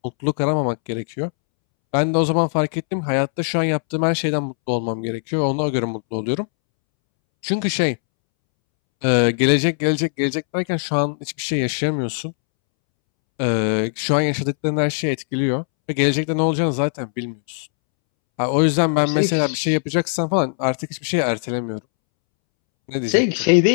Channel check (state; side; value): silent; right; 65 dB below the other